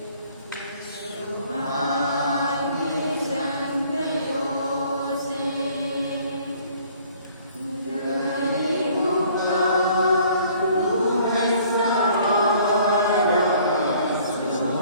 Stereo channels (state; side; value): inverted; both; correlation -0.56